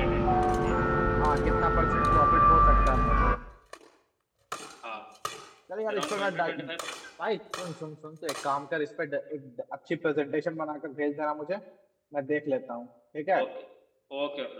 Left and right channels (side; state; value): both; identical; correlation 1.00